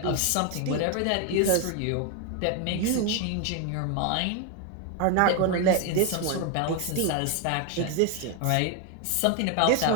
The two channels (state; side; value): different; both; correlation 0.01